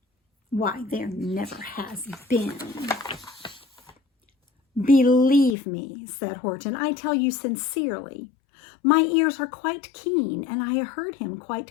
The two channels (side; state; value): right; drops out; at 5.6 s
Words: Why, there never has been." "Believe me," said Horton, "I tell you sincerely. My ears are quite keen, and I heard him